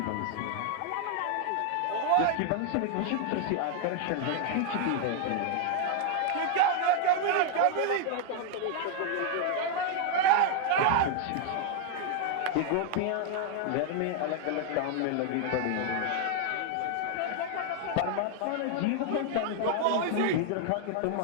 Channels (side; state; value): both; different; correlation 0.00